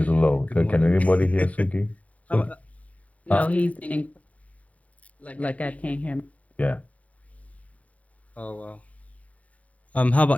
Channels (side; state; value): right; late; 0.068 ms